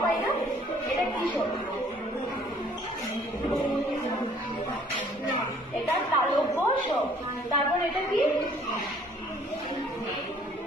পাই না? এটা কি স? এটা তালব্য স। তারপর এটা কি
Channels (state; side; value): normal; both; correlation 0.58